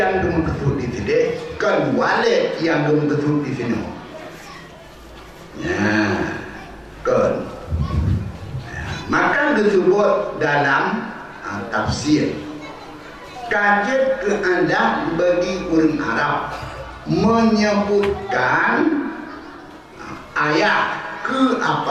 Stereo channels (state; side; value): identical; both; correlation 1.00